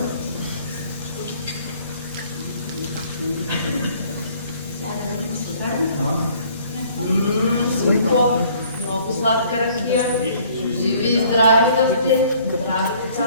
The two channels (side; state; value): both; inverted; correlation -0.57